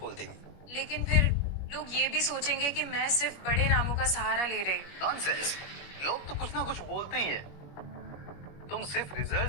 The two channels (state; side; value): late; right; 21 ms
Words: देगी। लेकिन फिर लोग ये भी सोचेंगे कि मैं सिर्फ बड़े नामों का सहारा ले रही हूँ। नॉनसेंस। लोग तो कुछ ना कुछ बोलते ही हैं। तुम सिर्फ